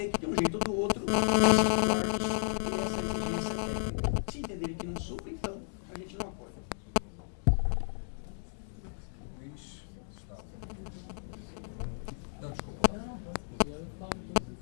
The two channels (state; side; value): silent; right; digital silence